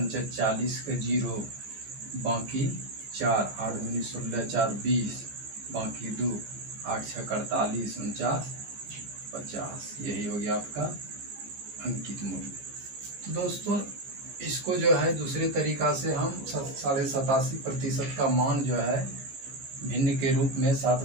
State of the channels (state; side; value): late; left; 15 ms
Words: 40 का 0, बाकी 4, 8 दूनी 16, 4 20, बाकी 2, 8 छः 48, 49, 50। यही हो गया आपका अंकित मूल्य। तो दोस्तों इसको जो है दूसरे तरीका से हम 87.5% का मान जो है भिन्न के रूप में